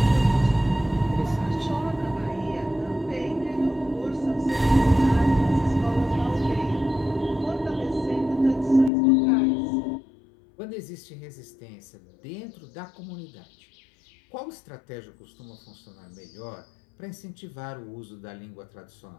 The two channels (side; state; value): right; drops out; at 8.9 s